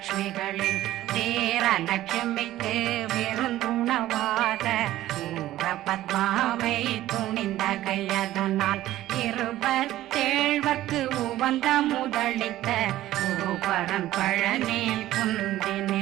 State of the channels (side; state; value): left; quieter; 14.6 dB